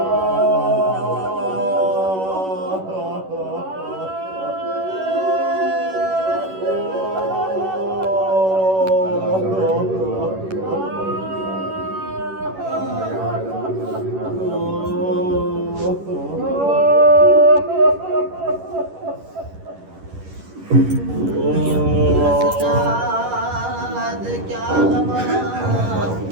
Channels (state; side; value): late; left; 11 ms